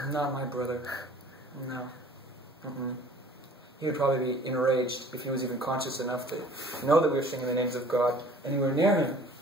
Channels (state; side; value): normal; both; correlation 0.50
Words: Not my brother. No. He would probably be enraged if he was even conscious enough to know that we were singing the names of God anywhere near him.